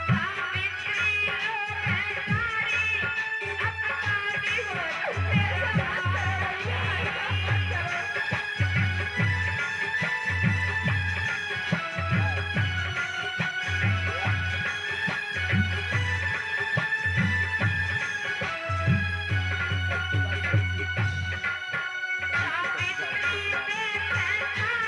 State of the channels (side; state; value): both; identical; correlation 1.00